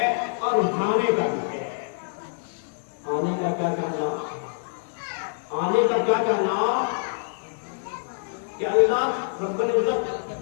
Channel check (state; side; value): silent; right; 61 dB below the other